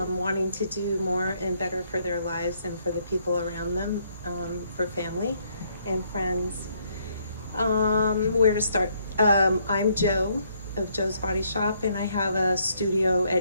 to do more and better for their lives and for the people around them, for family and friends. Where to start? I'm Joe of Joe's Body Shop, and I have a studio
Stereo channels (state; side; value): inverted; both; correlation -0.70